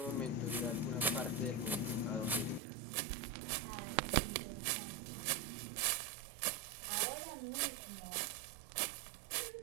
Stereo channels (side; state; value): left; drops out; at 2.6 s